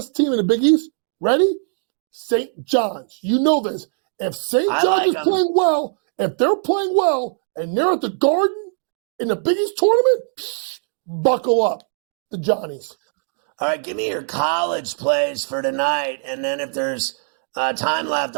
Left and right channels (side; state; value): left; silent; digital silence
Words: team in the Big East, ready? St. John's. You know this. If St. John's is playing well, if they're playing well, and they're at the Garden in the Big East tournament, buckle up, the Johnnies. All right, give me your college plays for tonight, and then if there's time left,